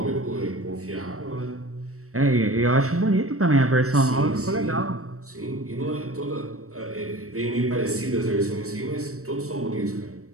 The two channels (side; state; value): left; late; 0.64 ms